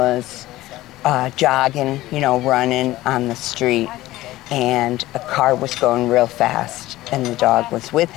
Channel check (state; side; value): quieter; right; 16.7 dB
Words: jogging, running on the street, and a car was going real fast, and the dog was with